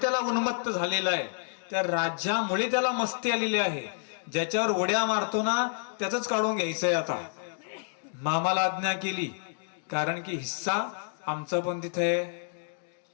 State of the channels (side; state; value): right; silent; digital silence